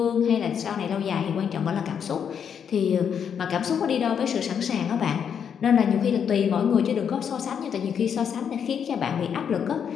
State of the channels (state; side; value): quieter; right; 7.7 dB